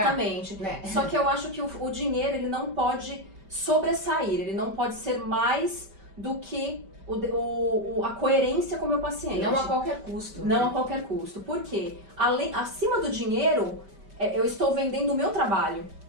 pagar, né? Só que eu acho que o dinheiro, ele não pode sobressair, ele não pode ser mais do que a coerência com o meu paciente. Não a qualquer custo. Não a qualquer custo. Por quê? Acima do dinheiro, eu estou vendendo o meu trabalho.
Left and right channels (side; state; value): left; late; 5.1 ms